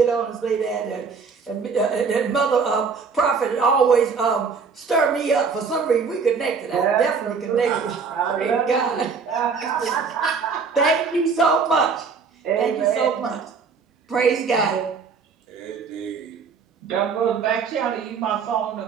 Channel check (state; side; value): quieter; left; 5.4 dB